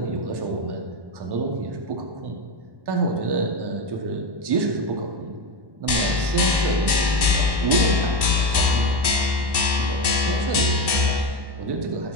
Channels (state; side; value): late; left; 1.1 ms